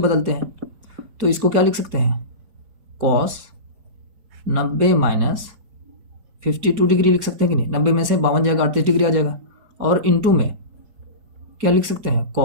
हैं। तो इसको क्या लिख सकते हैं, कॉस 90 माइनस 52 डिग्री लिख सकते हैं कि नहीं, 90 में से 52 जाएगा, 38 डिग्री आ जाएगा। और इंटू में क्या लिख सकते हैं,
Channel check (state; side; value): late; left; 4.6 ms